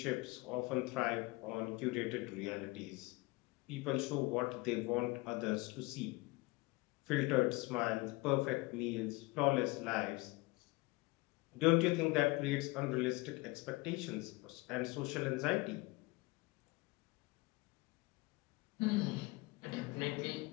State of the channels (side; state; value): right; quieter; 23.1 dB